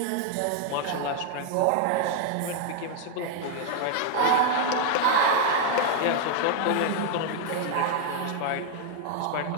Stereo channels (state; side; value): different; both; correlation 0.00